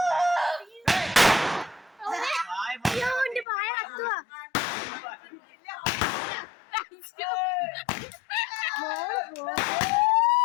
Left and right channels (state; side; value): drops out; right; at 3.5 s